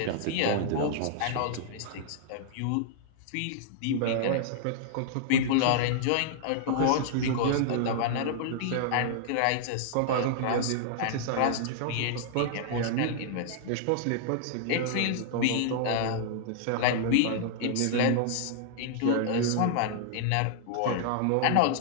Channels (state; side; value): different; both; correlation -0.01